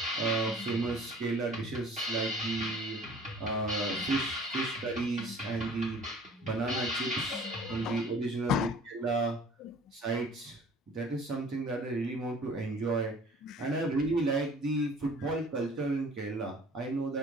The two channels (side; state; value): both; normal; correlation 0.49